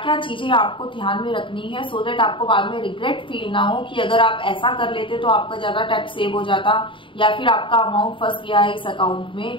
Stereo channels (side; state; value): right; late; 0.25 ms